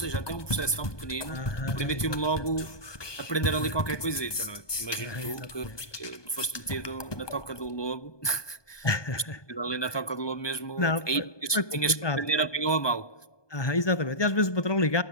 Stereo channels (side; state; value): right; late; 1.2 ms